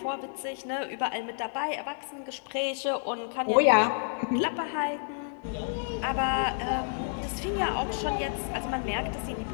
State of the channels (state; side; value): silent; right; digital silence